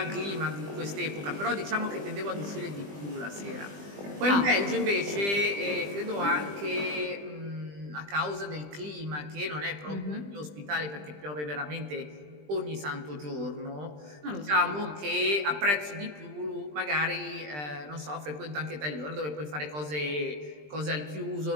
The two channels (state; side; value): late; left; 20 ms